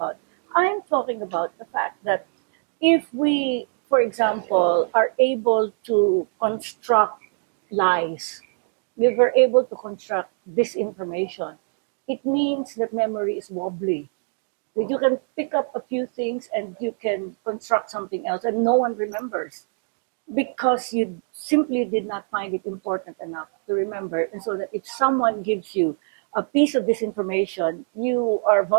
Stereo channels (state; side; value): silent; left; 62 dB below the other